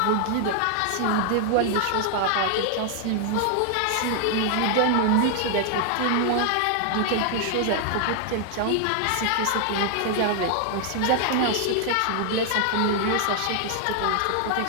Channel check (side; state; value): both; different; correlation 0.00